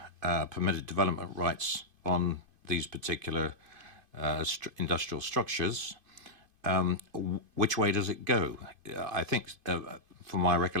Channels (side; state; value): left; late; 2.5 ms